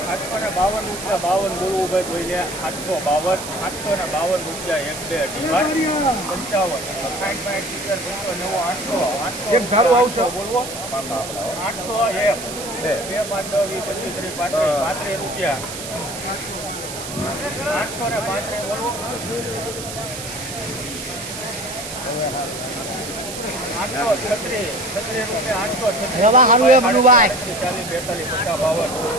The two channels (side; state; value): right; noise; hiss, 9 dB below the sound